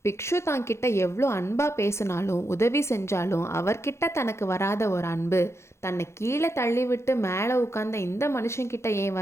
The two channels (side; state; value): right; late; 0.13 ms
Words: பிக்ஷு தான்கிட்ட எவ்வளோ அன்பாக பேசினாலும் உதவி செஞ்சாலும் அவர்கிட்ட தனக்கு வராத ஒரு அன்பு தன்னை கீழே தள்ளிவிட்டு மேலே உட்கார்ந்த இந்த மனுஷன்கிட்ட ஏன்